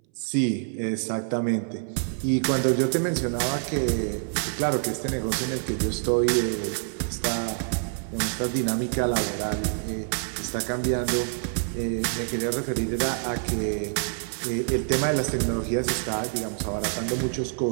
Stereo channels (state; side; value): silent; left; 61 dB below the other